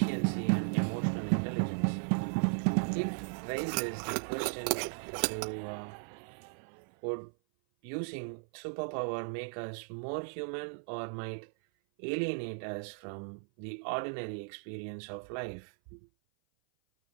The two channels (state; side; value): silent; left; 54 dB below the other